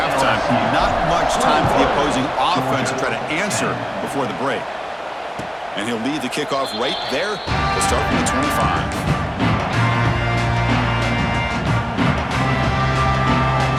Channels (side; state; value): both; identical; correlation 1.00